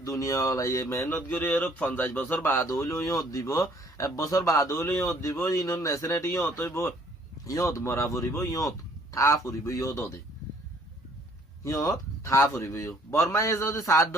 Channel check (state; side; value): normal; both; correlation 0.60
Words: দুনিয়া ওলাইয়ে মেহনত করে 50 বছর বাদ হইলেও ইয়ত দিব 1 বছর বাদ হইলেও ইয়ত দিব ইনর নেশনেটি ইয়ত হইব ইয়ত মরা ফুরিব ইয়ত থা ফুরিব ইয়ত ওদে ইয়ত থা ফুরিব বর্মায় যদি সাত